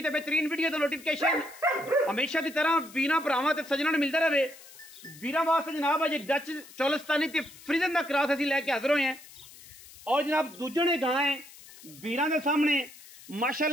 बेहतरीन वीडियो दा नोटिफिकेशन हमेशा की तरह वीरां भरावां ते सज्जनां नूं मिलदा रहे। वीरां वास्ते जनाब अज डच चौलिस्तानी ते फ्रीजन दा क्रॉस असीं लैके हाज़र होए हैं और जनाब दूजे ने गां है वीरां दे सामने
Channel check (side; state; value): left; noise; hiss, 19 dB below the sound